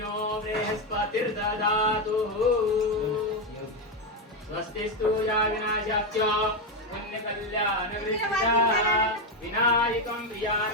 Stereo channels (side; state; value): both; normal; correlation 0.08